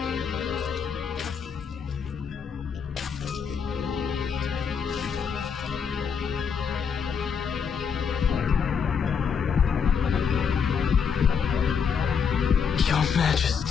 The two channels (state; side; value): quieter; right; 6.6 dB